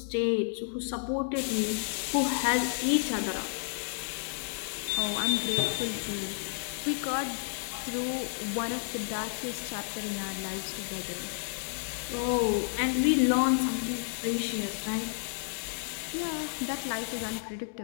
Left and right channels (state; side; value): silent; right; digital silence